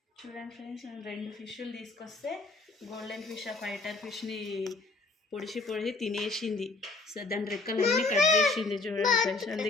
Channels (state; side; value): quieter; right; 3.6 dB